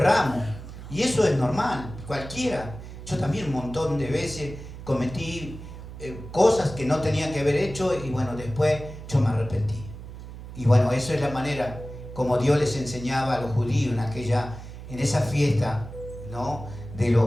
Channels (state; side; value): noise; right; hum, 13 dB below the sound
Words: y eso es normal, cualquiera. Yo también un montón de veces cometí cosas que no tenía que haber hecho, y bueno, después yo me arrepentí. Y bueno, eso es la manera como Dios les enseñaba a los judíos en esa fiesta, ¿no? de